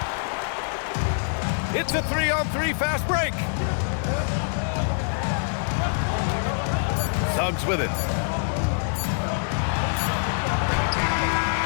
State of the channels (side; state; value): right; silent; digital silence